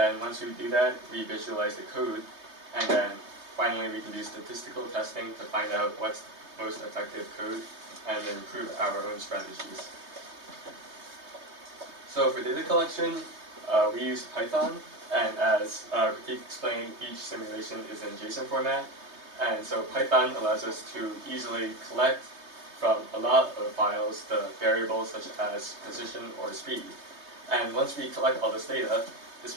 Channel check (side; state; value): left; late; 3.2 ms